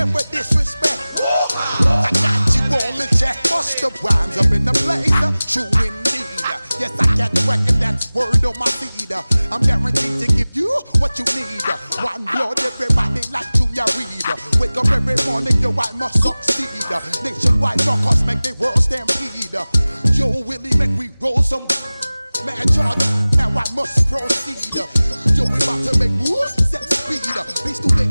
disrespect. I got you all in check. Bust the rhymes up in the place, true indeed. Yes, I got the record, that's word on my feed. I'm guaranteed to give you what you need. One blood, everybody like Junior Reed. Wake up every morning, yo, I must succeed. Nationwide knockouts make the world stampede. Yo, Willie, make we roll some mad charge. Now I must proceed. Yo, we about to make moves, set speed. Beast to make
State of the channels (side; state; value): both; inverted; correlation -0.98